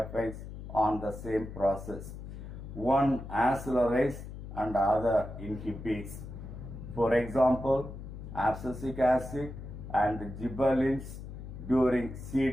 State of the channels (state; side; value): noise; left; hum, 11 dB below the sound